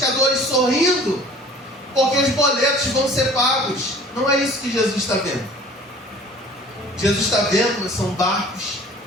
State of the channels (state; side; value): normal; both; correlation 0.48